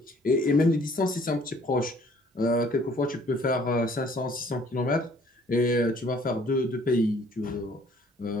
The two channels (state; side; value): normal; both; correlation 0.58